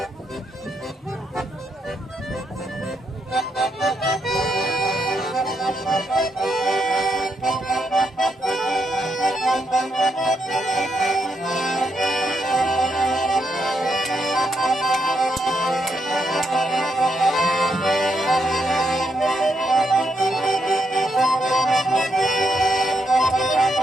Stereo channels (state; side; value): normal; both; correlation 0.79